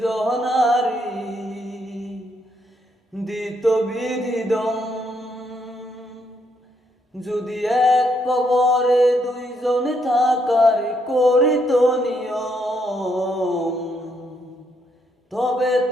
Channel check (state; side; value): normal; both; correlation 0.75